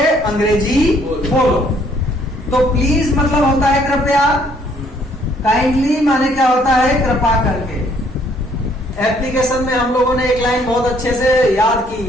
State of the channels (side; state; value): both; normal; correlation 0.64